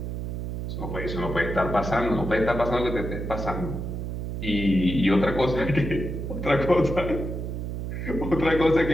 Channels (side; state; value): right; noise; hum, 4 dB below the sound